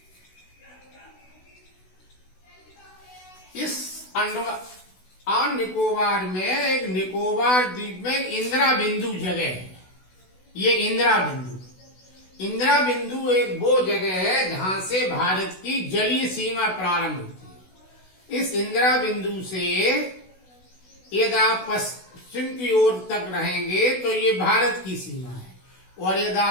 इस अंडमान निकोबार में एक निकोबार द्वीप में इंदिरा बिंदु जगह है। ये इंदिरा बिंदु एक वो जगह है जहां से भारत की जलीय सीमा प्रारंभ होती है। इस इंदिरा बिंदु से यदि आप पश्चिम की ओर तक रहेंगे तो ये भारत की सीमा है। और यदि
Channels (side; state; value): right; late; 16 ms